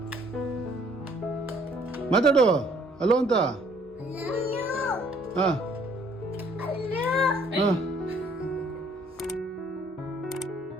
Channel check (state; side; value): normal; both; correlation 0.62